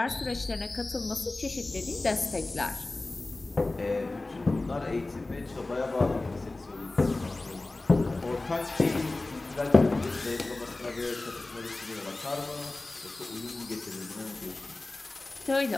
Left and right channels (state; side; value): quieter; right; 3.1 dB